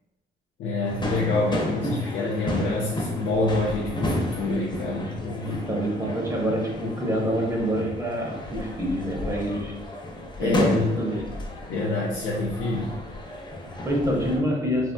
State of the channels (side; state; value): both; normal; correlation 0.59